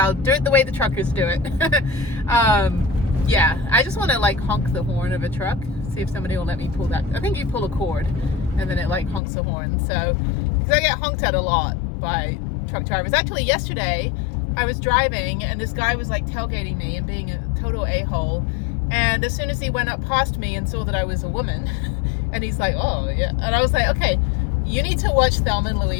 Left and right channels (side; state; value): right; drops out; at 9.2 s